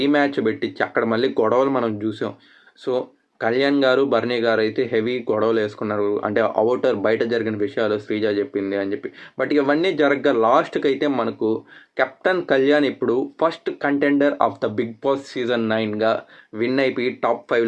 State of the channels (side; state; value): both; identical; correlation 1.00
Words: పెట్టించి అక్కడ మళ్ళీ గొడవలు మనం చూసాం. సో కళ్యాణ్ గారు భరణి గారు అయితే హెవీ గొడవలు వేసుకున్నారు. అంటే అవుటర్ బయట జరిగిన విషయాలు శ్రీజ చెప్పింది అని చెప్పి. బట్ ఇవన్నీ జరగగా లాస్ట్కి అయితే మనకు కెప్టెన్ కళ్యాణ్ ఇప్పుడు first contender of the Bigg Boss season 9గా విన్ అయిపోయి టాప్